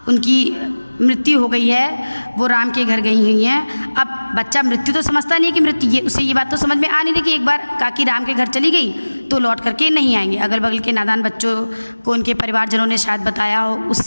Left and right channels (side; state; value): both; inverted; correlation -1.00